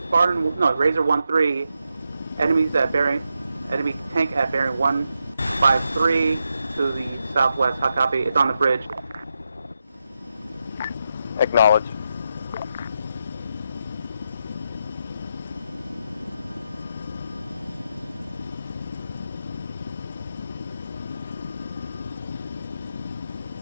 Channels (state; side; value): inverted; both; correlation -0.86